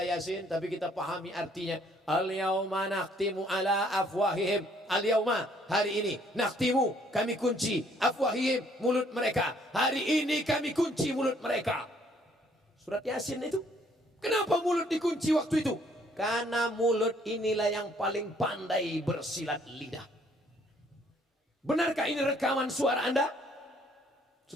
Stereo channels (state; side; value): normal; both; correlation 0.64